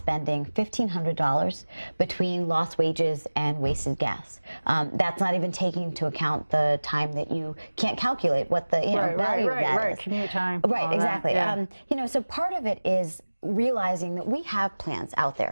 $1,500 between lost wages and wasted gas. That's not even taking into account the time that you can't calculate what the value of that is. Commute time. Right, exactly. Yeah. So part of it is realizing that we have plans out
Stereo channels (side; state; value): both; inverted; correlation -1.00